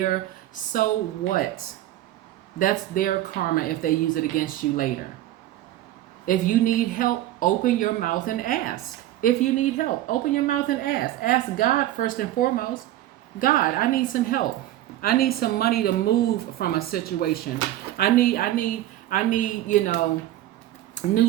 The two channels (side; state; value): left; quieter; 14.0 dB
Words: So what? That's their karma if they use it against you later. If you need help, open your mouth and ask. If you need help, open your mouth and ask. Ask God first and foremost. God, I need some help. I need some money to move from a situation. I need,